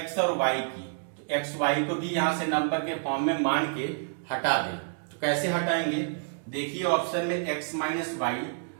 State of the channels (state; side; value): silent; left; digital silence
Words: और y की, तो x y को भी यहाँ से नंबर के फॉर्म में मान के हटा दें। तो कैसे हटाएंगे? देखिए ऑप्शन में x माइनस वाई